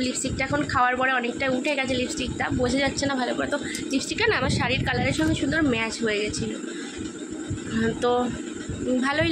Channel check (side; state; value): both; identical; correlation 1.00